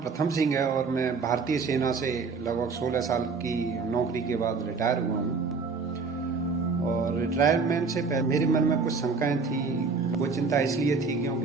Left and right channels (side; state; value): left; quieter; 4.7 dB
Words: सिंह है और मैं भारतीय सेना से लगभग 16 साल की नौकरी के बाद रिटायर हुआ हूँ। और रिटायरमेंट से पहले मेरे मन में कुछ शंकाएं थी। वो चिंता इसलिए थी